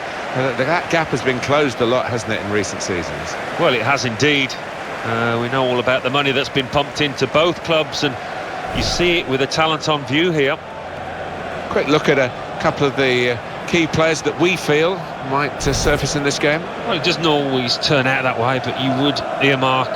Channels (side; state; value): both; identical; correlation 1.00